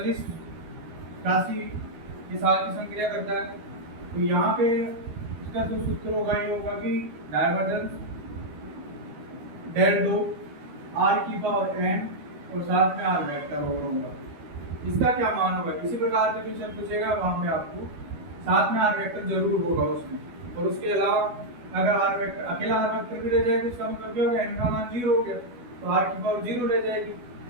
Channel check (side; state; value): left; late; 12 ms